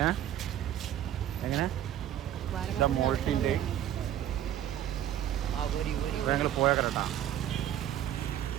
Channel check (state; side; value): quieter; left; 11.3 dB